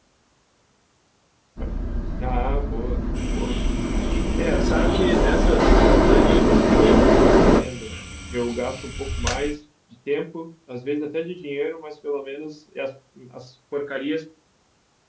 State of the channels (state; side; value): identical; both; correlation 1.00